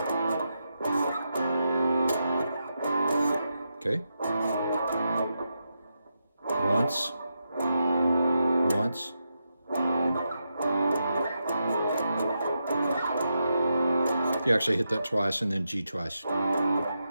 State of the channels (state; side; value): inverted; both; correlation -0.86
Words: Okay. Once. You actually hit that twice and then G twice.